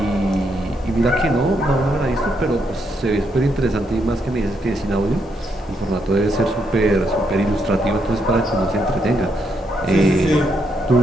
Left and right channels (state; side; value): normal; both; correlation 0.78